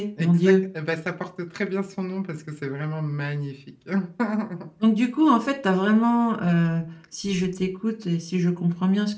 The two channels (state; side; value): identical; both; correlation 1.00